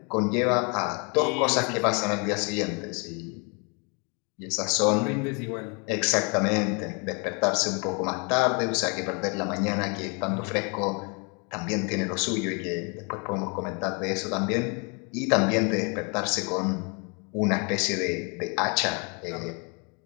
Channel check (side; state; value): right; quieter; 33.9 dB